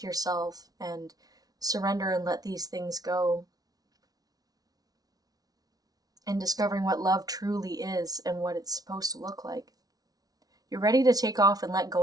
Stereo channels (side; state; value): left; late; 0.18 ms